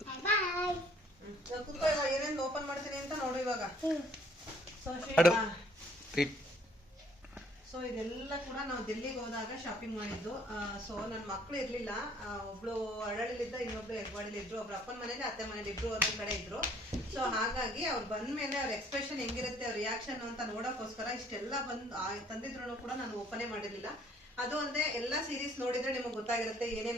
ಬಾಯ್. ಏನೇನು ಓಪನ್ ಮಾಡ್ತೀನಿ ಅಂತ ನೋಡು ಇವಾಗ. ಸೊ ಇದೆಲ್ಲ ಕೂಡ ನಾವು ಡೆಲ್ಲಿಗೆ ಹೋದಾಗ ಶಾಪಿಂಗ್ ಮಾಡಿದ್ದು. ಸೊ ನನ್ನ ಮಕ್ಳು ಇರ್ಲಿಲ್ಲ, ಒಬ್ಳು ಅರಳಿಲಿದ್ದ, ಇನ್ನೊಬ್ಳು ಹೆಗ್ವಾಡಿಲಿ ಇದ್ರು, ಒಬ್ರು ಅಪ್ಪನ ಮನೇಲಿ ಅತ್ತೆ ಮನೇಲಿ ಇಬ್ರು ಒಂದೊಂದ್ ಕಡೆ ಇದ್ರು. ಸೊ ಹಾಗಾಗಿ ಅವ್ರು ಬಂದ್ಮೇಲೆ ಅವ್ರ ಎಕ್ಸ್ಪ್ರೆಷನ್ ಹೆಂಗಿರುತ್ತೆ, ಅವ್ರ ರಿಯಾಕ್ಷನ್ ಅಂತ ನೋಡೋಕ್ಕೋಸ್ಕರ ಇಷ್ಟೆಲ್ಲ ತಂದಿದ್ರು ಕೂಡ ನಾನು ಓಪನೇ ಮಾಡಿರ್ಲಿಲ್ಲ. ಅದು ಒಂದೇ ಎಲ್ಲ ಸೀರೀಸ್ ನೋಡಿದ್ರೆ ನಿಮಗೆ ಗೊತ್ತಾಗಿರುತ್ತೆ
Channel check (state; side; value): normal; both; correlation 0.60